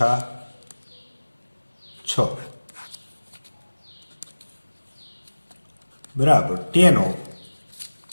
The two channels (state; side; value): inverted; both; correlation -1.00